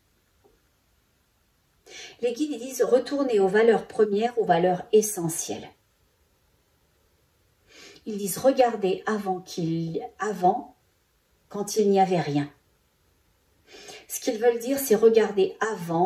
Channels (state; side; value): identical; both; correlation 1.00